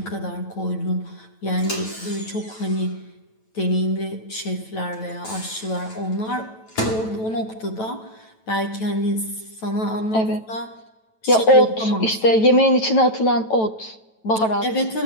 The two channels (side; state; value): right; late; 9.1 ms